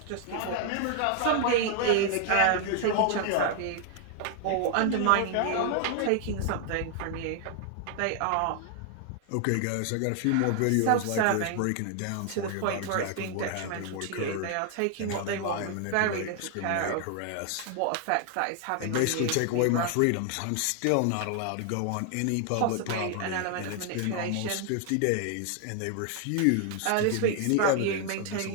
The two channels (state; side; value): different; both; correlation 0.00